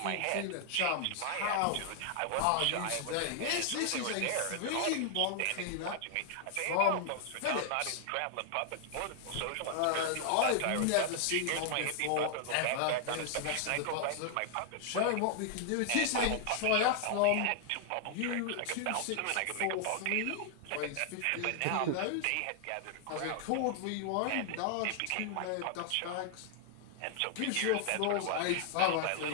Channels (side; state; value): both; different; correlation 0.00